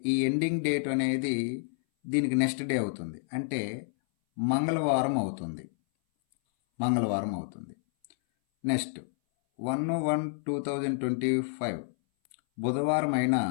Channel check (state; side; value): silent; right; 58 dB below the other